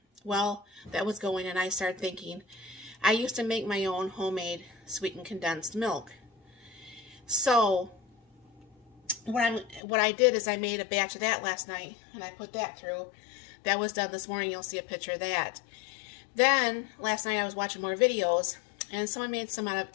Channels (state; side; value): drops out; right; at 9.8 s